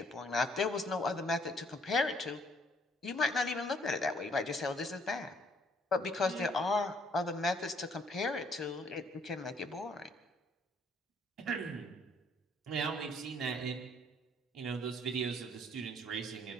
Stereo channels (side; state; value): both; normal; correlation 0.65